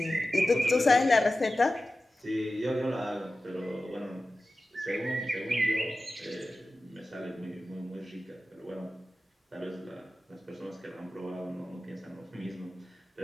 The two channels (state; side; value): normal; both; correlation 0.94